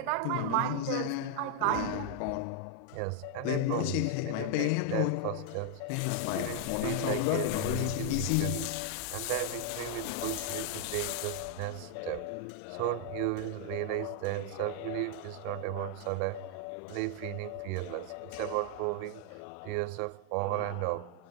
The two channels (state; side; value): different; both; correlation 0.00